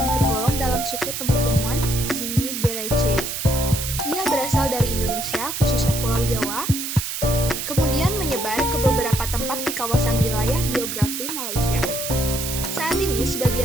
tergolong dalam suku temu-temuan Zingiberaceae. Ia berasal dari Indonesia, khususnya Pulau Jawa, kemudian menyebar ke beberapa tempat di kawasan wilayah geografi Malaysia. Saat ini,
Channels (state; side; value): noise; right; hiss, 4 dB below the sound